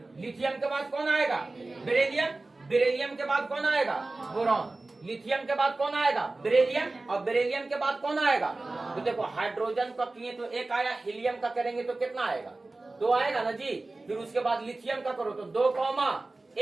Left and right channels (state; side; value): quieter; left; 3.2 dB